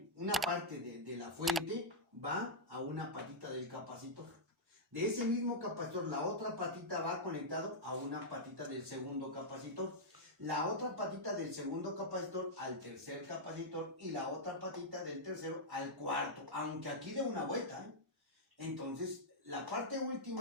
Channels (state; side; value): normal; both; correlation -0.07